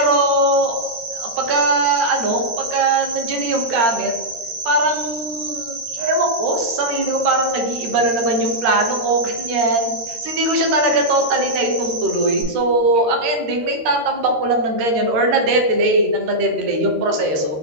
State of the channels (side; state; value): left; late; 13 ms